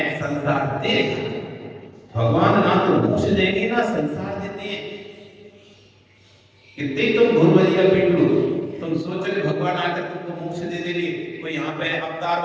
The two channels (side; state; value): both; identical; correlation 1.00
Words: संसार तेरे हाथ में। भगवान ना तो मोक्ष देंगे ना संसार देते हैं। कितने तुम भूल भजिया पीट लो, तुम सोच रहे भगवान आकर तुमको मोक्ष दे देंगे, कोई यहाँ पे